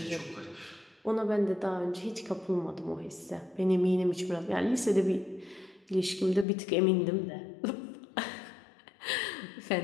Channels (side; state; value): right; drops out; at 6.5 s